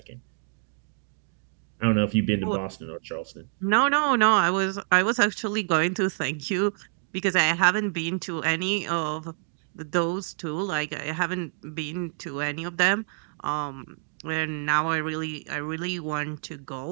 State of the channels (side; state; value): left; silent; 60 dB below the other